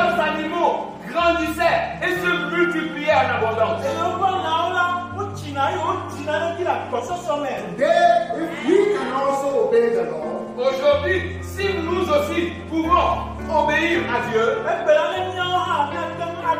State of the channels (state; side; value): identical; both; correlation 1.00